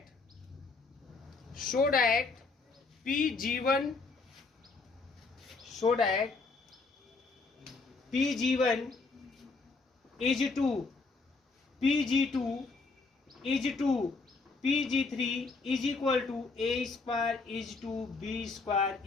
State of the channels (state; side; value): quieter; right; 4.0 dB